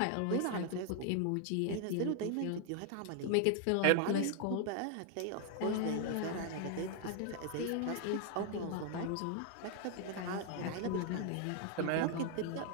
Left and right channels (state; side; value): different; both; correlation 0.00